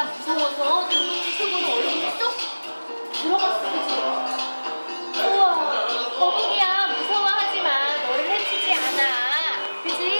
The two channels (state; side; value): inverted; both; correlation -1.00